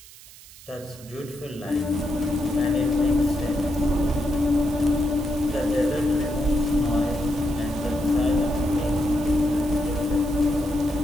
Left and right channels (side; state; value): right; noise; hiss, 20 dB below the sound